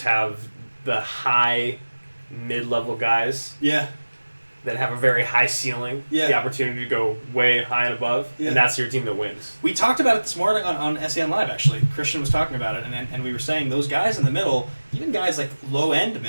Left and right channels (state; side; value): inverted; both; correlation -1.00